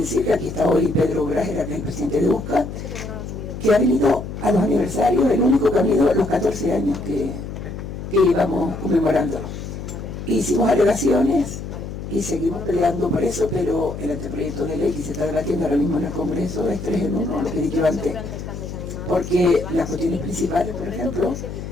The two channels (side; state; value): left; noise; hum, 8 dB below the sound